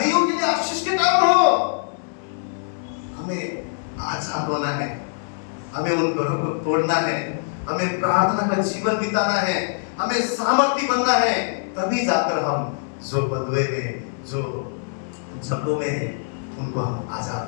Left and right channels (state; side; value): silent; right; digital silence